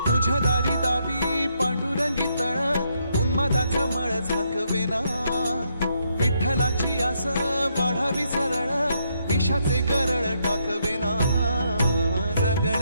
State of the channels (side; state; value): both; inverted; correlation -0.76